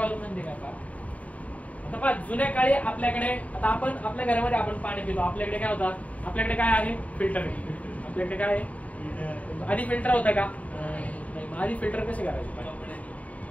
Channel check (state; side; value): late; right; 0.069 ms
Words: म्हणजे काय पहा, आता पहा जुन्या काळी आपल्याकडे, आता आपण आपल्या घरामध्ये आपण पाणी पितो, आपल्याकडे काय होतं, आपल्याकडे काय आहे, फिल्टर आहे. आपल्याकडे काय आहे, आधी फिल्टर होता का, नाही. आधी फिल्टर कसे करायचे,